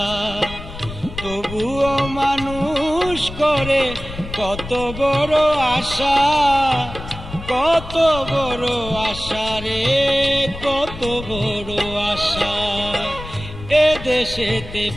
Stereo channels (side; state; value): left; noise; rumble, 11 dB below the sound